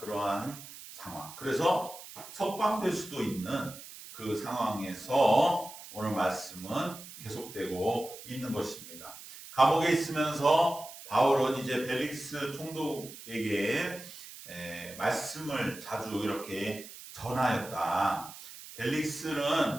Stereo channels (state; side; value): noise; right; hiss, 15 dB below the sound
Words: 상황. 그래서 석방될 수도 있는 그 상황에서 오늘 말씀은 계속되고 있는 것입니다. 감옥에 있으면서 바울은 이제 벨릭스 총독에게 말씀을 자주 이렇게 전하였다.